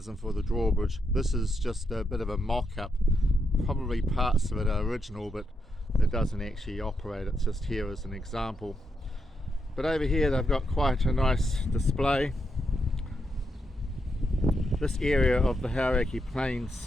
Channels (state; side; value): normal; both; correlation 0.82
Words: for the drawbridge. This is just a bit of a mock-up. Probably parts of it are original, but it doesn't actually operate. It's just here as an example. But over here they've got quite a nice display. This area of the Hauraki